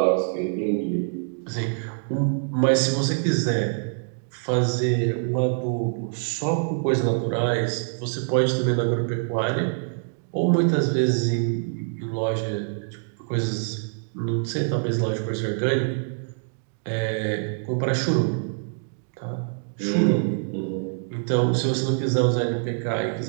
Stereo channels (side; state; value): left; silent; digital silence